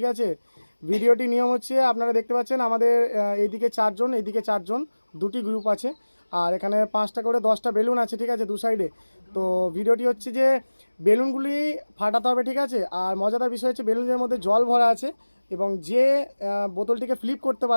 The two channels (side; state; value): both; inverted; correlation -1.00